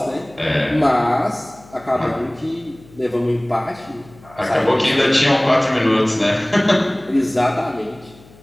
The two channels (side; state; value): left; noise; hum, 25 dB below the sound